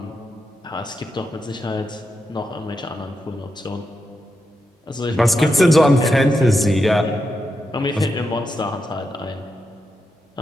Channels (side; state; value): both; normal; correlation 0.86